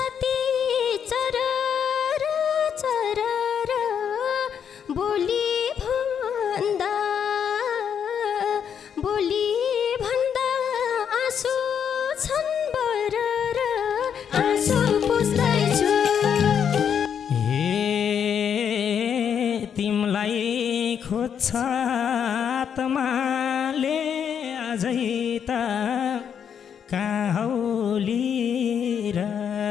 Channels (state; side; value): quieter; right; 7.9 dB